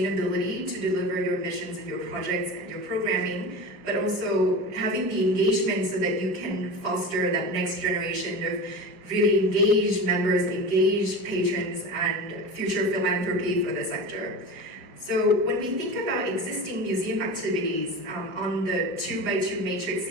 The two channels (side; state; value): left; late; 5.2 ms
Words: to deliver your missions and your projects and your programming, but also having the engagement so that you can foster that next generation of really engaged members, engaged patrons, and future philanthropy for the sector. So when we think about existing museum activities on the 2x2 matrix